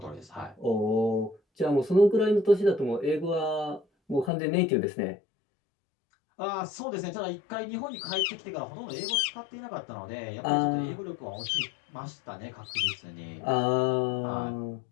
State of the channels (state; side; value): drops out; right; at 4.3 s